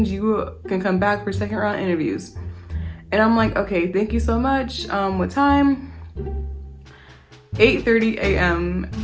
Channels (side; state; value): both; identical; correlation 1.00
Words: you can come back for second round interviews. And I'm like, okay, thank you so much. What time? 8:30 a.m.